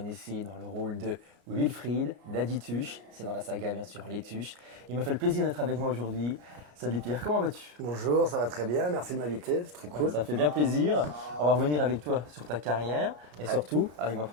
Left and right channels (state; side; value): late; left; 33 ms